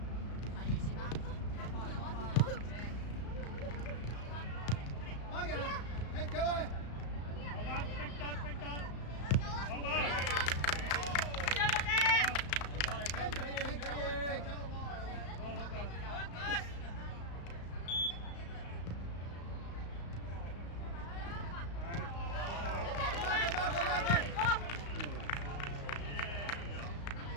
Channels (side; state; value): right; late; 35 ms